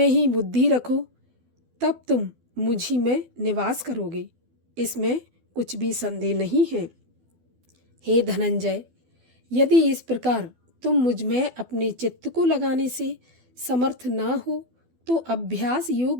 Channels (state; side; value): late; left; 12 ms